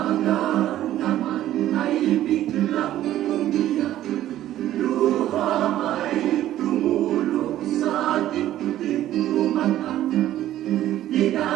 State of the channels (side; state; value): left; quieter; 13.1 dB